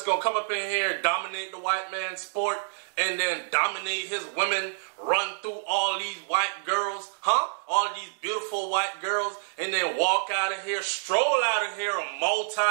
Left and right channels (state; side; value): silent; left; digital silence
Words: going to come up in here, dominate the white man's sport, and then dominate his women, run through all these white girls, huh? All these beautiful white girls, and then walk out of here, stroll out of here, a